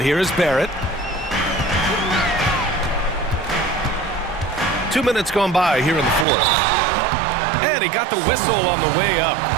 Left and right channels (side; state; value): left; drops out; at 6.2 s